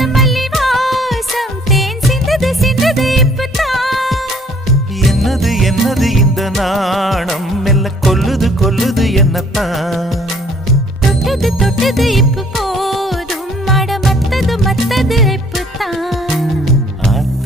மல்லி வாசம் தேன் சிந்தது சிந்தது இப்பதான். என்னது என்னது இந்த நாணம் மெல்ல கொல்லுது கொல்லுது என்னத்தான். தொட்டது தொட்டது இப்ப போதும் மட மத்தது மத்தது இப்பதான்.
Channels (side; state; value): both; normal; correlation 0.59